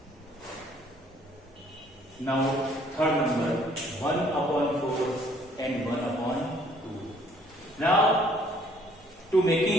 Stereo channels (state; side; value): normal; both; correlation 0.61